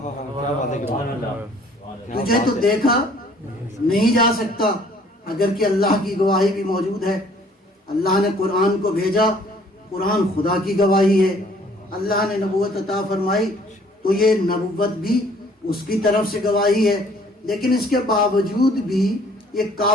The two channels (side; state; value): both; normal; correlation 0.57